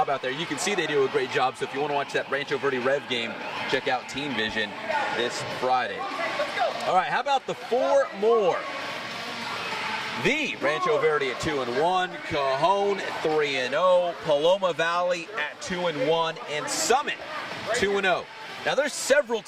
out there. You can see they do a great job. So if you want to watch that Rancho Verde Rev game, check out Teen Vision this Friday. All right, how about the 4 more? The Rancho Verde at 2-1, Cajon 3-0, Paloma Valley at 2-1, and Summit 2-0. Now, there's several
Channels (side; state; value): both; identical; correlation 1.00